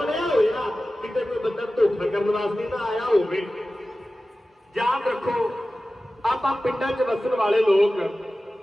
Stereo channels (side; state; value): both; normal; correlation 0.95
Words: ਹੋਇਆ, ਕਿਤੇ ਕੋਈ ਬੰਦਾ ਧੋਖਾ ਕਰਨ ਵਾਸਤੇ ਨਾ ਆਇਆ ਹੋਵੇ। ਯਾਦ ਰੱਖੋ ਆਪਾਂ ਪਿੰਡਾਂ 'ਚ ਵਸਣ ਵਾਲੇ ਲੋਕ,